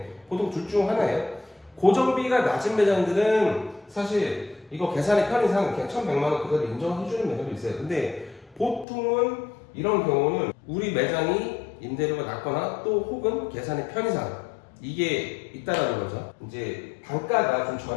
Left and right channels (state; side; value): drops out; right; at 8.8 s